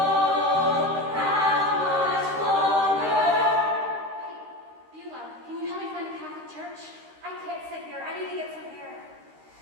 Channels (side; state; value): left; late; 13 ms